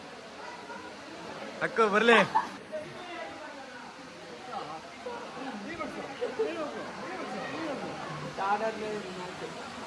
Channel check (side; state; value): both; identical; correlation 1.00